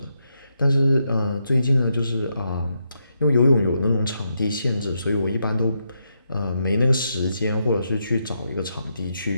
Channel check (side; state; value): both; inverted; correlation -0.82